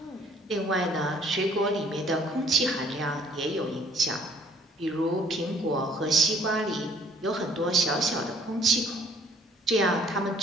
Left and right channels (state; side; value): normal; both; correlation 0.60